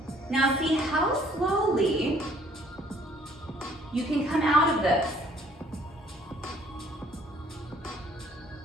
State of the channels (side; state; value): both; normal; correlation 0.60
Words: Now see how slowly you can come out of this.